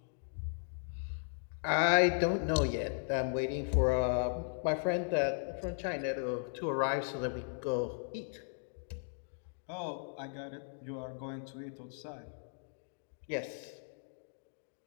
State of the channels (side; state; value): right; silent; digital silence